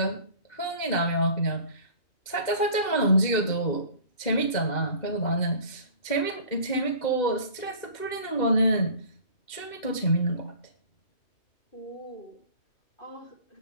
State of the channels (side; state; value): right; late; 2.1 ms